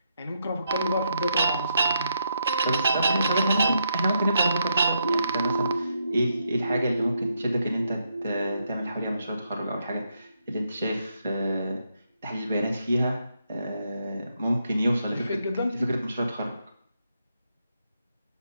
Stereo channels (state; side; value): inverted; both; correlation -0.79